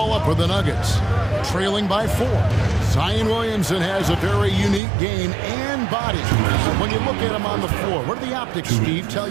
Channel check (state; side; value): drops out; left; at 4.8 s